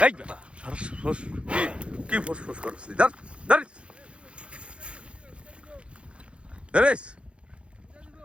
কি ফোস ফোস করছি, দাঁড়িস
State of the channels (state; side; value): late; left; 0.059 ms